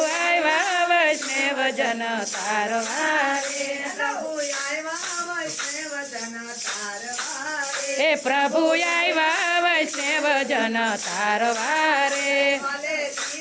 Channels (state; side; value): identical; both; correlation 1.00